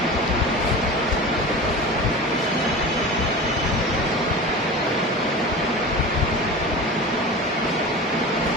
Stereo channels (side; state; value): both; normal; correlation 0.32